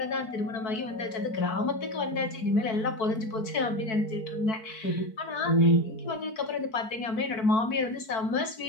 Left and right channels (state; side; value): late; right; 4.5 ms